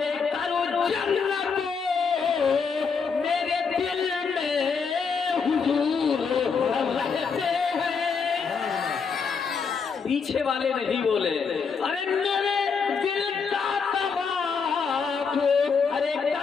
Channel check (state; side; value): quieter; right; 5.6 dB